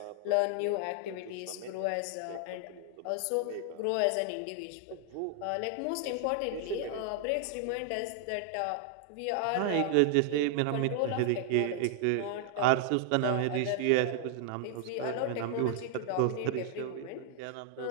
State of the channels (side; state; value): both; different; correlation 0.00